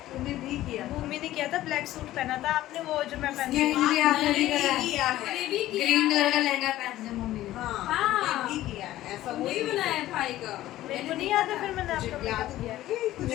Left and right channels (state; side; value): quieter; right; 14.8 dB